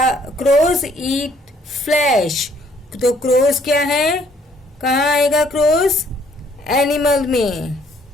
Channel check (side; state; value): both; normal; correlation 0.64